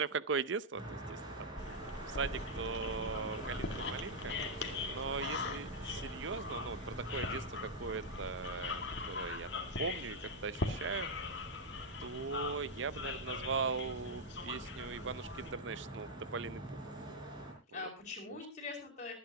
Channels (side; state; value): both; normal; correlation 0.00